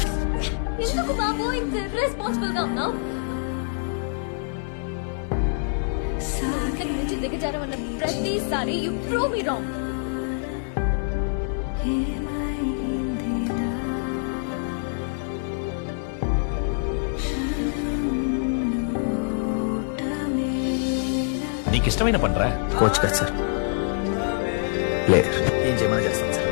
ఎందుకు బాబు ఇంత ఇర్రెస్పాన్సిబుల్ గా ఉన్నావు? ఇంతకు మించి దిగజారమన్న ప్రతిసారి యు ప్రూవ్ మీ రాంగ్. నీకు ఇష్టమైన పనిరా. కోచ్ కదా సార్, ప్లేయర్ ఏం చేయమని చేస్తాను సార్,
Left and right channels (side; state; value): right; silent; 62 dB below the other